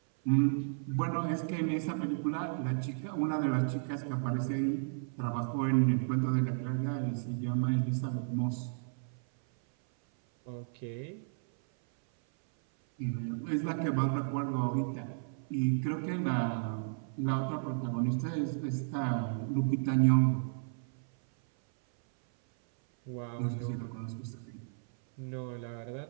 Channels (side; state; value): left; silent; 56 dB below the other